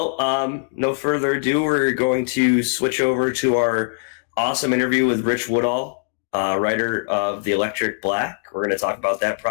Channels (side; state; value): right; silent; digital silence